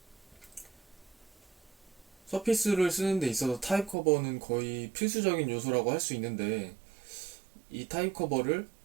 서피스를 쓰는 데 있어서 타입 커버는 거의 필수적인 요소라고 할 수 있는데, 이 타입 커버를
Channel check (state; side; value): drops out; left; at 4.0 s